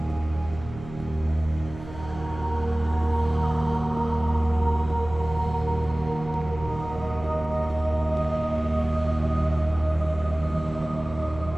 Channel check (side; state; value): right; noise; hum, 14 dB below the sound